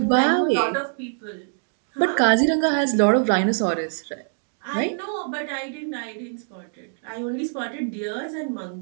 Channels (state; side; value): silent; left; digital silence